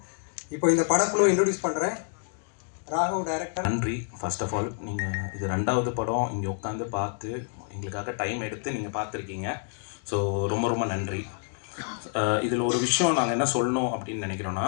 இப்போ இந்த படக்குழு இன்ட்ரடியூஸ் பண்ணுறேன். ராகவ் டைரக்டர். நன்றி. ஃபர்ஸ்ட் ஆஃப் ஆல் நீங்கள் இது 2வது படம் இங்கே உட்காந்து பார்த்து எங்களுக்காக டைம் எடுத்து நீங்கள் பார்த்துருக்கீங்க. ஸோ ரொம்ப ரொம்ப நன்றி. இதில் ஒரு விஷயம் நாங்கள் என்ன சொல்லணும் அப்படின்னு நினைக்கிறோன்னா,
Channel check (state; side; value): silent; right; 59 dB below the other